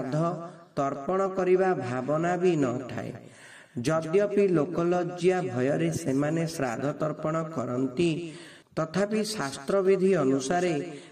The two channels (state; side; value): identical; both; correlation 1.00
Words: तर्पण करिबा भावना भी न थाए। यद्यपि लोकलज्जा भयरे सेमाने श्राद्ध तर्पण करन्ति तथापि शास्त्र विधि अनुसारे